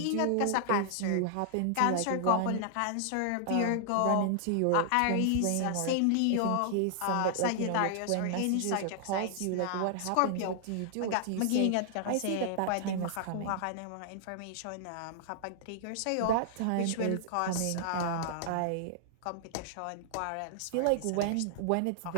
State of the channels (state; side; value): different; both; correlation -0.01